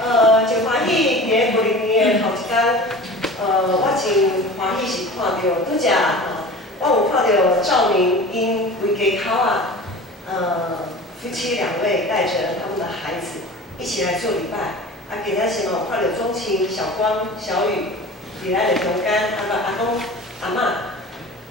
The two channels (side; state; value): both; normal; correlation 0.37